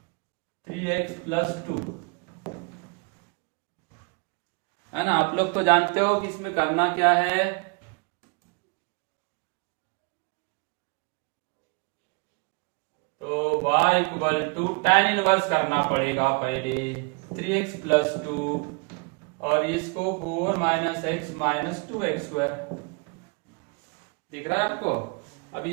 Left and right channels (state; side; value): quieter; left; 32.5 dB